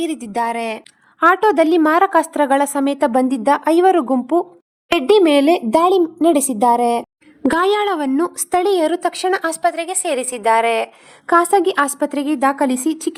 ಇರಿದಿದ್ದಾರೆ. ಆಟೋದಲ್ಲಿ ಮಾರಕಾಸ್ತ್ರಗಳ ಸಮೇತ ಬಂದಿದ್ದ 5 ಗುಂಪು ರೆಡ್ಡಿ ಮೇಲೆ ದಾಳಿ ನಡೆಸಿದ್ದಾರೆ. ಗಾಯಾಳವನ್ನು ಸ್ಥಳೀಯರು ತಕ್ಷಣ ಆಸ್ಪತ್ರೆಗೆ ಸೇರಿಸಿದ್ದಾರೆ. ಖಾಸಗಿ ಆಸ್ಪತ್ರೆಗೆ ದಾಖಲಿಸಿ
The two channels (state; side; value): identical; both; correlation 1.00